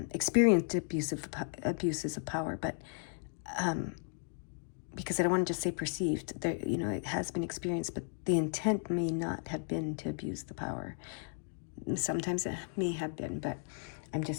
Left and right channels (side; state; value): right; silent; 54 dB below the other